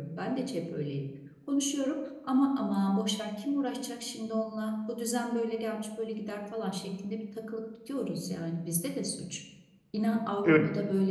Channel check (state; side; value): identical; both; correlation 1.00